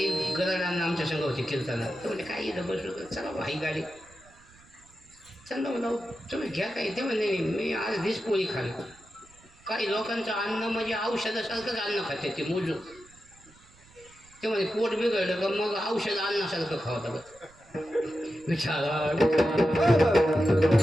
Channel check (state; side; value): noise; right; rumble, 27 dB below the sound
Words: गरडांना आमच्या संघ होते कीर्तना, तर म्हणजे काही इथं बसलो तर चला भाई गाडी चला म्हणा तुम्ही घ्या काही. ते म्हणजे मी आज दिस पोळी खाली. काही लोकांचं अन्न म्हणजे औषधासारखंच अन्न खाते ते मोजून. ते म्हणजे पोट बिघडलं का मग औषध अन्नासारखं खावं लागत. विचारा